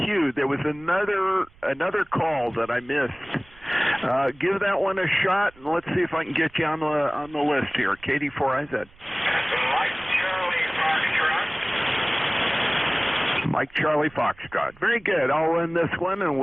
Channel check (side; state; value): right; noise; rumble, 26 dB below the sound